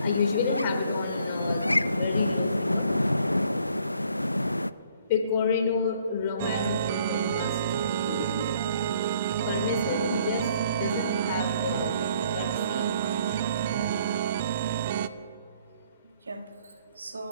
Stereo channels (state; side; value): inverted; both; correlation -0.63